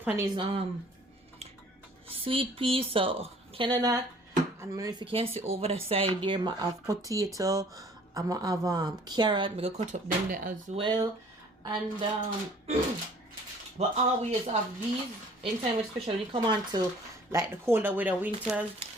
on is sweet pea, so Canada. And if you can see over the side there, I have potato. I'm gonna have carrot. I'm gonna cut up them there as well. And but always have these anytime, especially when you come on to like the colder weather, winters.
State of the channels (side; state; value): both; normal; correlation 0.54